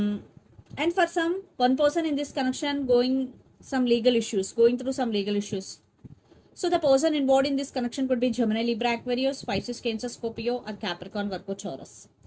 for some, one person in this connection going some legal issues, going through some legal issues. So the person involved in this connection could be Gemini, Libra, Aquarius, Pisces, Cancer, Scorpio, or Capricorn, Virgo, Taurus.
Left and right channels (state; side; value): identical; both; correlation 1.00